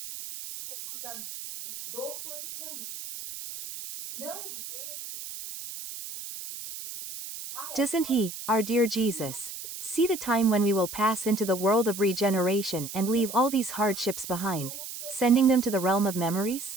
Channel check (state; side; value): noise; right; hiss, 10 dB below the sound